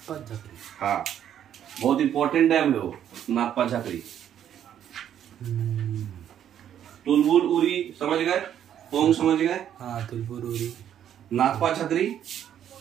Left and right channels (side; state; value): left; quieter; 10.0 dB